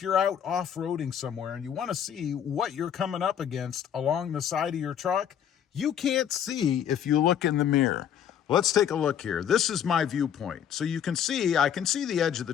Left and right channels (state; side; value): quieter; right; 9.1 dB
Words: you're out off-roading somewhere and you want to see what you're coming up against along the side of your truck, you can't see if you look in the mirror. Let's take a look here. This is my viewpoint. So you can see, I can see the edge of the